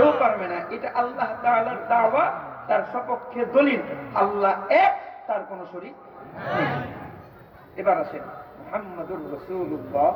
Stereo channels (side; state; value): both; identical; correlation 1.00